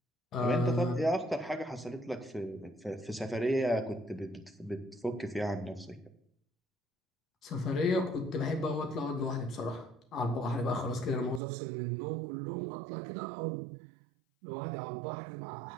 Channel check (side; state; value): left; drops out; at 11.4 s